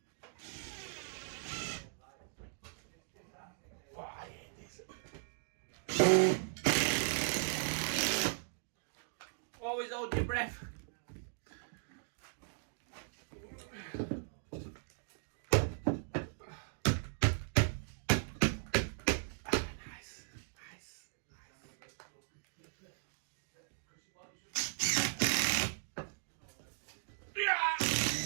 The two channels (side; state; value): left; silent; digital silence